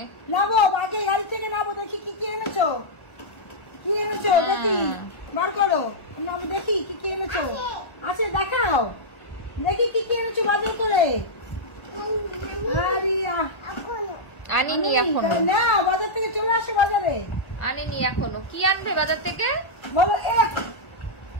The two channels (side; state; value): right; late; 1.4 ms